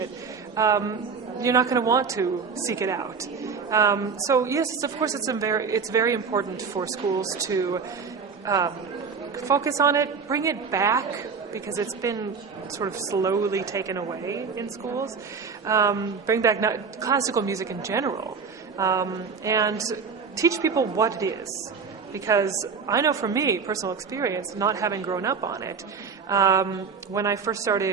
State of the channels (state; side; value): quieter; left; 5.6 dB